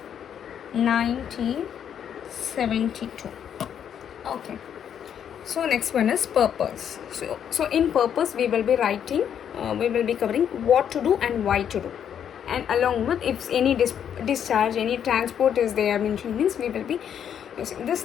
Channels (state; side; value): quieter; right; 8.8 dB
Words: 1972. Okay. So next one is purpose. So in purpose we will be writing, we will be covering what to do and why to do, and along with if any discharge, any transport is there mentioned, means we will be using these